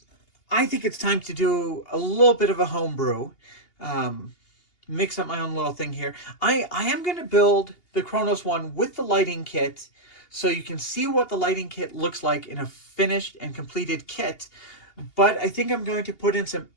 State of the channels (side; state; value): right; late; 2.8 ms